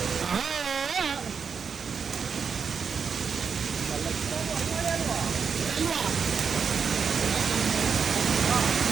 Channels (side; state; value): left; quieter; 6.1 dB